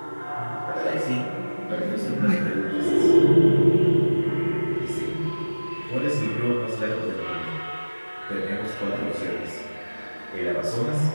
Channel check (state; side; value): inverted; both; correlation -1.00